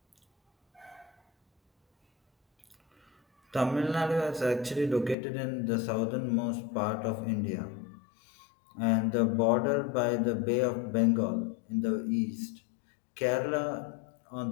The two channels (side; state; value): right; drops out; at 5.2 s